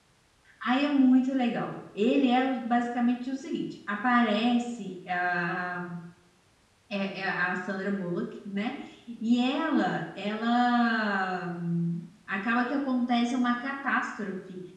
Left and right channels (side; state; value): both; identical; correlation 1.00